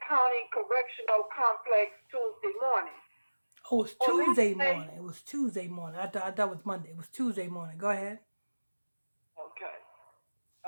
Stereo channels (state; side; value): inverted; both; correlation -1.00